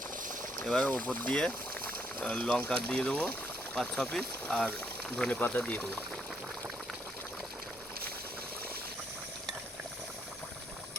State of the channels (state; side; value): normal; both; correlation 0.73